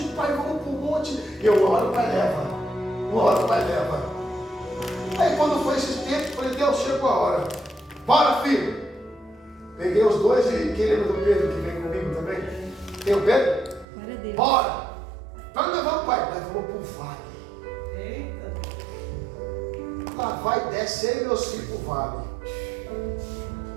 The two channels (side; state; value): left; drops out; at 13.9 s